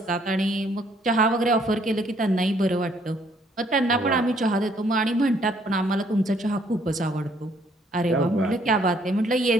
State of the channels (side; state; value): both; normal; correlation 0.65